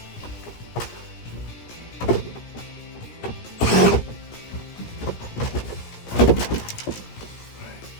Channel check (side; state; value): right; late; 17 ms